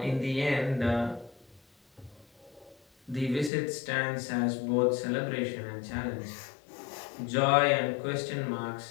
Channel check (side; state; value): right; drops out; at 3.5 s